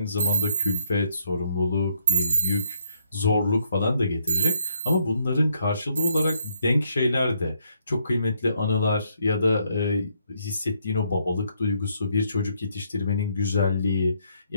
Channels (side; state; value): both; inverted; correlation -0.71